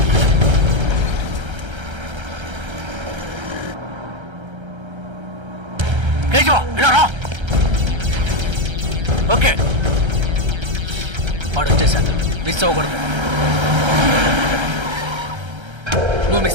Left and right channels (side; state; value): left; late; 1.3 ms